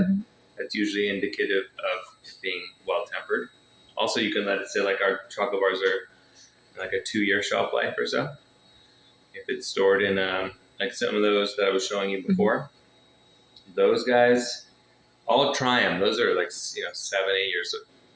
that's usually indicative of it being well tempered. Also, you can let it sit, like our chocolate bars are like a 2-year shelf life or so. If it's stored in like some of those that I was showing you before, those guys, I'll try them. Those are like 7, 8 years old.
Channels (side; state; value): both; identical; correlation 1.00